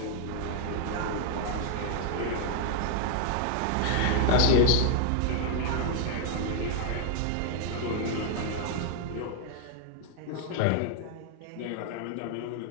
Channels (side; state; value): both; different; correlation 0.00